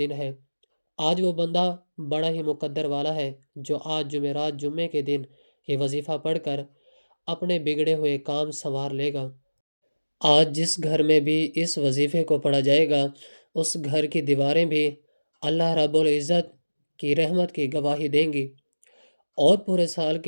ہے۔ آج وہ بندہ بڑا ہی مقدر والا ہے جو آج جمعرات جمعے کے دن یہ وظیفہ پڑھ کر اپنے بگڑے ہوئے کام سنوار لے گا۔ آج جس گھر میں بھی اس وظیفے کو پڑھا جائے گا اس گھر کی دیواریں بھی اللہ رب العزت کی رحمت کی گواہی دیں گی اور پورے سال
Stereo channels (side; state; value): both; inverted; correlation -1.00